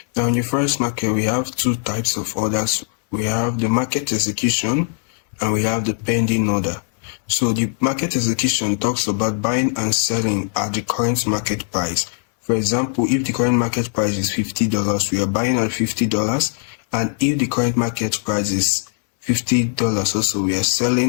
Now in the first market, we have two types of orders. We have the market execution and we have the pending order. So the market execution talks about buying and selling at the current market price. For example, if the current market price is $50, we are buying at $50, and if the current market price is $50 also, we are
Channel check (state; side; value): silent; right; 62 dB below the other